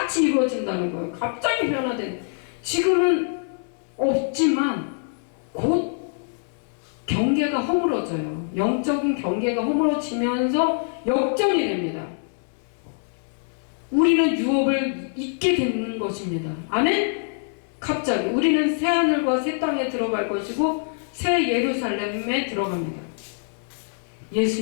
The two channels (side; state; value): right; silent; digital silence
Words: 이루어진다는 거예요. 갑자기 변화된. 지금은 없지만 곧 경계가 허물어져요. 영적인 경계가 허물어지면서 역전이 됩니다. 우리는 유업을 잊게 되는 것입니다. 아멘? 갑자기 우리는 새 하늘과 새 땅에 들어갈 것이고 새 예루살렘에 들어갑니다.